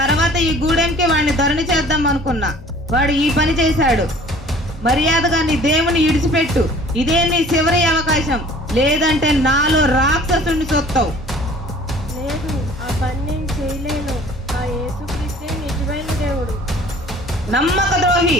ఈ గూడెంకి వాడిని దొరని చేద్దాం అనుకున్నా, వాడు ఈ పని చేశాడు. మర్యాదగా నీ దేవుని ఇడిచిపెట్టు. ఇదే నీ చివరి అవకాశం. లేదంటే నాలో రాక్షసుని చూస్తావు. లేదు, ఆ పని నేను చేయలేను. ఆ యేసుక్రీస్తే నిజమైన దేవుడు. నమ్మక ద్రోహి,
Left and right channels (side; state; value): both; normal; correlation 0.50